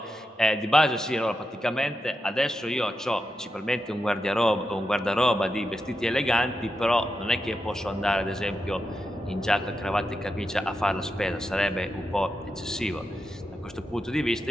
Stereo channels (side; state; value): both; normal; correlation 0.87